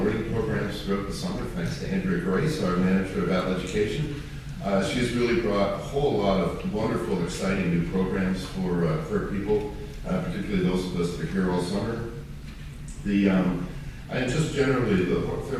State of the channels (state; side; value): identical; both; correlation 1.00